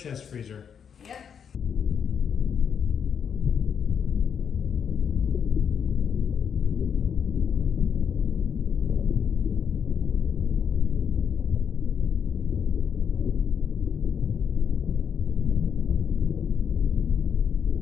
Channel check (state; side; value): quieter; right; 7.4 dB